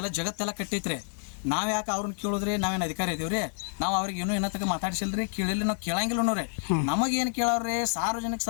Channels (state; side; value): silent; right; 59 dB below the other